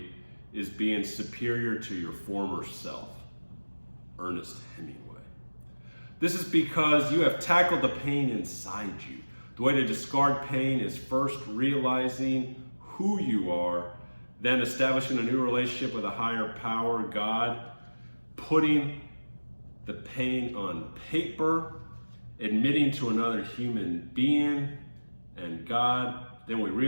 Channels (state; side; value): inverted; both; correlation -1.00